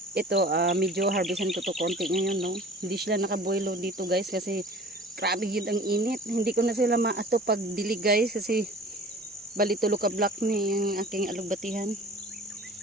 Ito, medyo harvestan ko to konti ngayon, no. Hindi sila nakabuelo dito guys kasi grabe yun ang init. Hindi ko na sila maato pag dilig guys kasi bali tulo ka block ni yung aking alugbatihan.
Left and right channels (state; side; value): normal; both; correlation 0.44